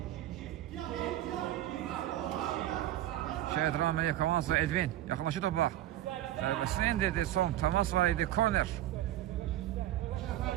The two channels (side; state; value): left; quieter; 13.5 dB